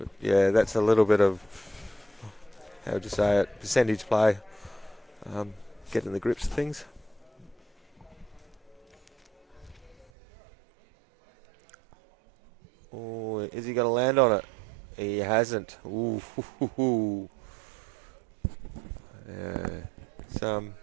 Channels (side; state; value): left; drops out; at 10.1 s